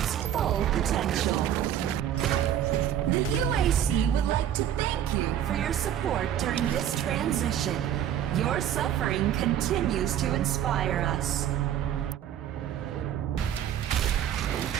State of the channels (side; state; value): left; quieter; 10.4 dB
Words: full potential. The UAC would like to thank you for your support during this transition. Your suffering continues to inspire us.